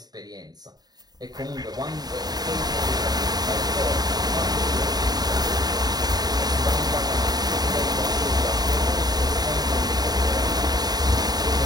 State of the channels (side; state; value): left; late; 0.19 ms